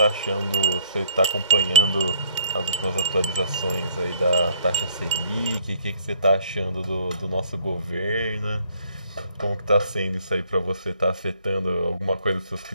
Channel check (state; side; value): inverted; both; correlation -0.63